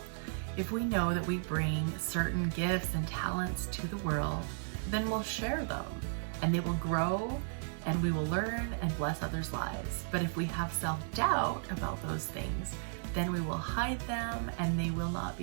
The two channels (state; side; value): silent; left; digital silence